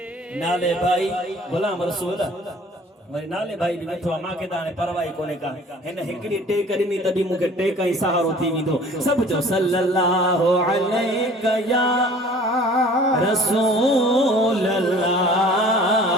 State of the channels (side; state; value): both; normal; correlation 0.49